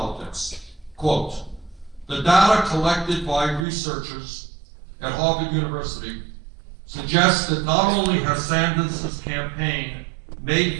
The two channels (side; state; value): left; drops out; at 3.7 s